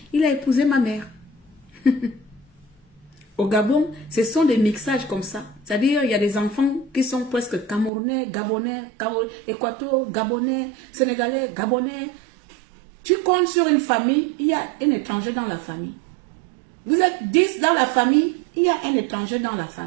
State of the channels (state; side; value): drops out; left; at 7.9 s